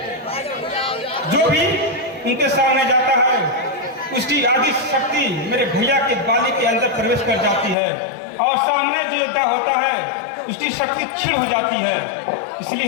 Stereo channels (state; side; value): drops out; right; at 7.8 s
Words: जो भी उनके सामने जाता है उसकी आदि शक्ति मेरे भैया के बाली के अंदर प्रवेश कर जाती है और सामने जो योद्धा होता है उसकी शक्ति क्षीण हो जाती है।